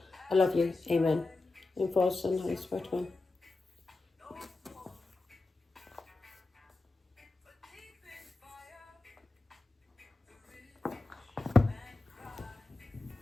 I love you, amen. And for the Son, Holy Spirit, amen.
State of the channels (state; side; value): quieter; right; 3.3 dB